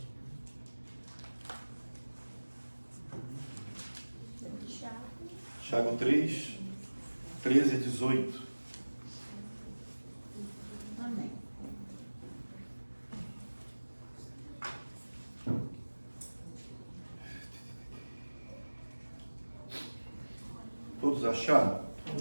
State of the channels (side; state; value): both; inverted; correlation -1.00